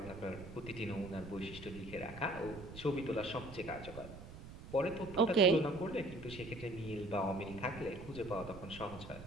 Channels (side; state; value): right; noise; rumble, 13 dB below the sound